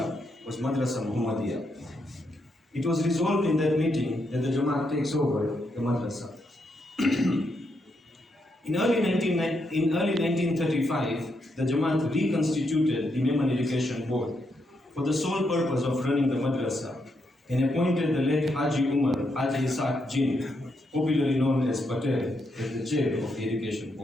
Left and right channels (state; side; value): normal; both; correlation 0.80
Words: was Madressa Mohammediyya. It was resolved in that meeting that the Jamaat takes over the madrasa. In early 1935, the Jamaat reconstituted the Memon Education Board for the sole purpose of running the madrasa and appointed the late Haji Umar Haji Isaac Jin, popularly known as Patel, as the chair of the Education